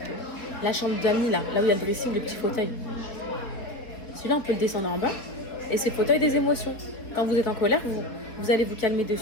la chambre d'amis, là où il y a le dressing, le petit fauteuil. Celui-là, on peut le descendre en bas. Et c'est le fauteuil des émotions. Quand vous êtes en colère, vous allez vous calmer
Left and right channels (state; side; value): late; right; 4.1 ms